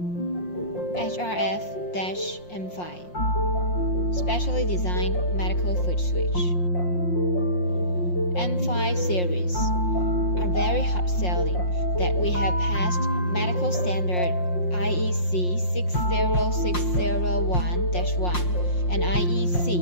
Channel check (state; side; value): late; right; 5.6 ms